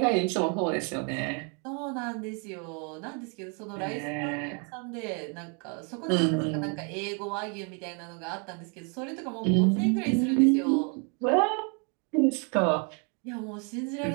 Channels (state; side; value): quieter; left; 37.0 dB